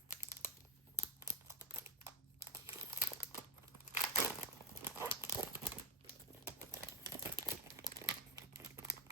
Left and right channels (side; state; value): both; normal; correlation 0.13